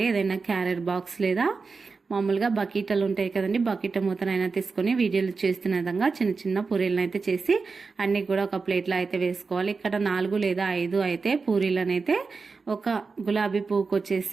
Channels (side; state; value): left; quieter; 4.5 dB